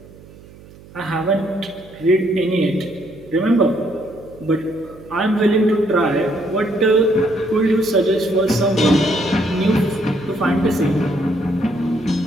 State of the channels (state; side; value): noise; right; hum, 21 dB below the sound